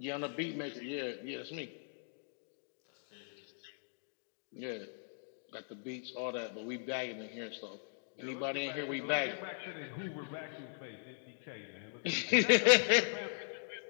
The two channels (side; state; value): right; silent; digital silence